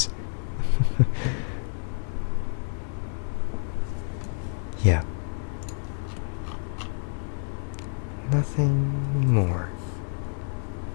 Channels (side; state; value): right; silent; 59 dB below the other